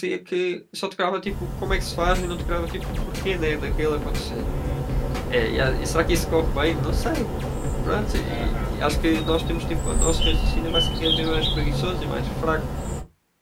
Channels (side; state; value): both; identical; correlation 1.00